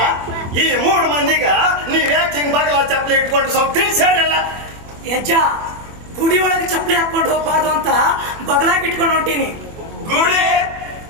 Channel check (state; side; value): late; left; 24 ms